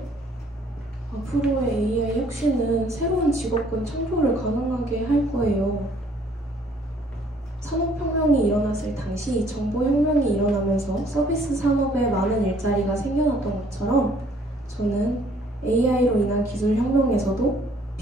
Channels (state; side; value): normal; both; correlation 0.61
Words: 앞으로의 AI 혁신은 새로운 직업군 창조를 가능하게 할 거예요. 산업혁명이 일어났을 당시 정보혁명이 일어나면서 서비스 산업에 많은 일자리가 생겨났던 것처럼 저는 AI로 인한 기술혁명에서도